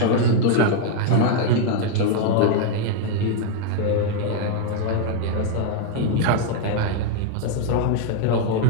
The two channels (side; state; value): both; different; correlation 0.00